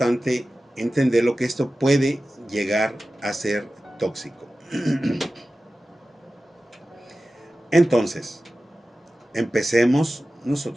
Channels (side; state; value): both; normal; correlation 0.95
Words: entender lo que esto puede llegar a ser tóxico. Entonces, empecemos